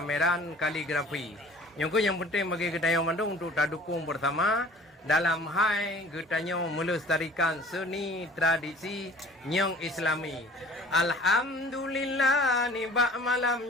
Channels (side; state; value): both; normal; correlation 0.48